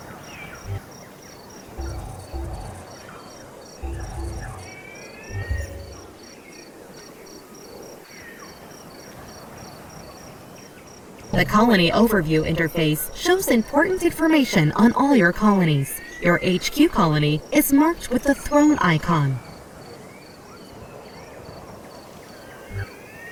The Colony Overview interface shows important information on all your colonies. Your HQ colony is marked with the throne icon.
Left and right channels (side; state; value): both; identical; correlation 1.00